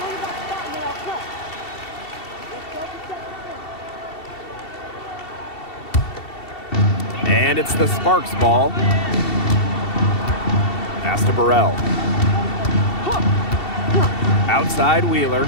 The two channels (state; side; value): late; right; 2.7 ms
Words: And it's the Sparks ball. Pass to Burrell. Outside Wheeler.